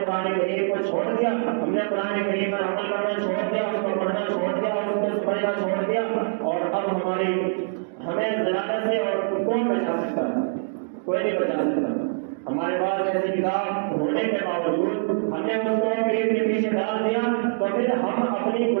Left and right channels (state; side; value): silent; left; digital silence